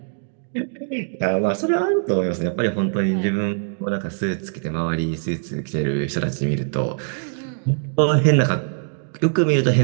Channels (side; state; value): left; silent; digital silence